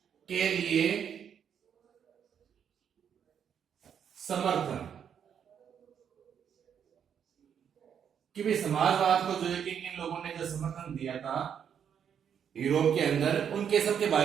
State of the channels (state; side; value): quieter; left; 8.2 dB